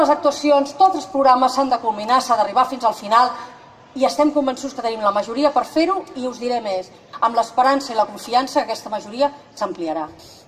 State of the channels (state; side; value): identical; both; correlation 1.00